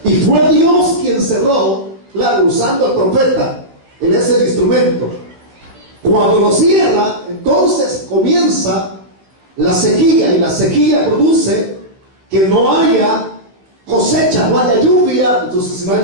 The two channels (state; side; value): late; left; 15 ms